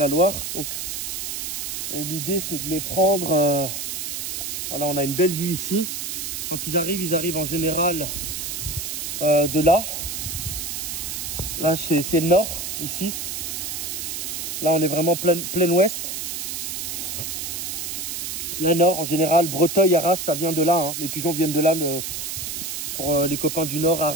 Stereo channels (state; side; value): noise; right; hiss, 4 dB below the sound